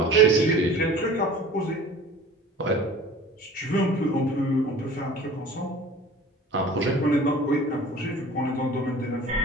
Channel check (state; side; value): normal; both; correlation 0.43